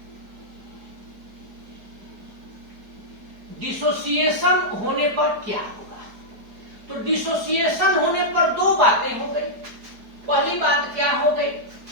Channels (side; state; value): left; late; 4.8 ms